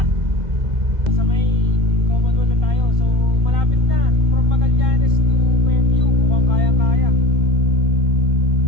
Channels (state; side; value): late; left; 1.9 ms